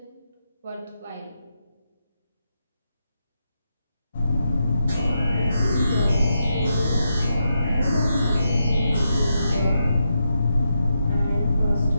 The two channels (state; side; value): inverted; both; correlation -0.84